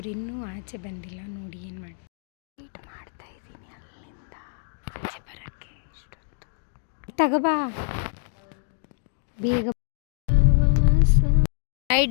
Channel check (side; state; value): right; silent; digital silence